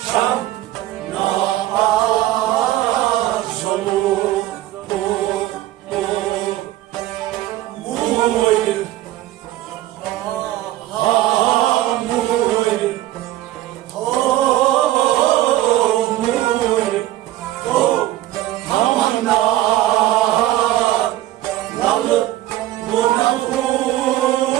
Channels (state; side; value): quieter; left; 15.0 dB